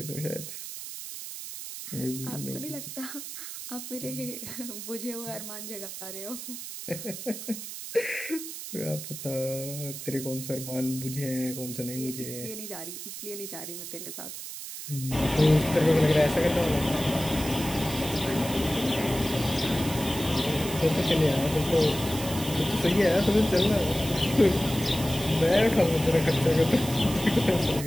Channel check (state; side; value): noise; right; hiss, 9 dB below the sound